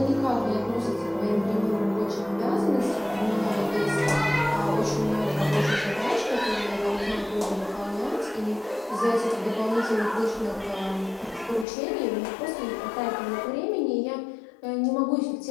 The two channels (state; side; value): drops out; right; at 11.7 s